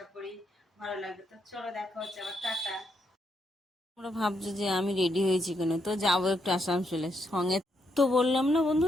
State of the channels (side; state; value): both; normal; correlation 0.78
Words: করি ভালো লাগবে। তো চলো দেখা হচ্ছে আবার, টাটা। তোমরা ভাবছো যে আমি রেডি হয়েছি কেন, তো যাবো একটু আসানসোলে সঙ্গে। তো বললাম না